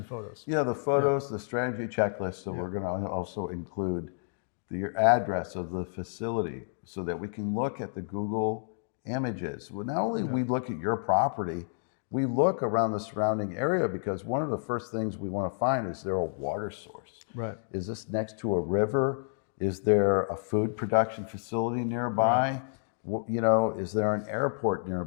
photos. Yeah, the photos, the strategy checklist. So we're going to also include the address of the facility so that we can look at the Google images. Well, not only we look at your property, we look around the surrounding area, because one of the first things we want to find is there a water source? Right. Is this next to a river? Is there a food production facility nearby? You know, is there an airport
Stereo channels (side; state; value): right; silent; digital silence